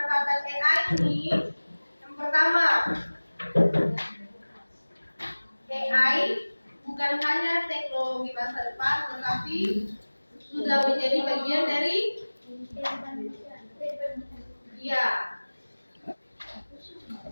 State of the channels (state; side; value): inverted; both; correlation -1.00